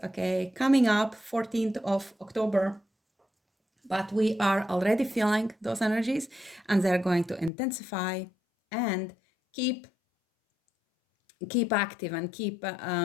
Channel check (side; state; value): right; drops out; at 7.5 s